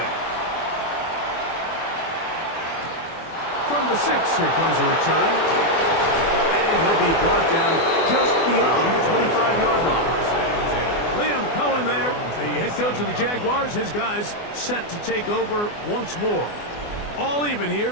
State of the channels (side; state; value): right; late; 24 ms